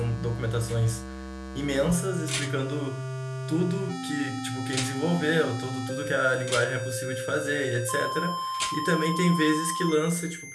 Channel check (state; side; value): identical; both; correlation 1.00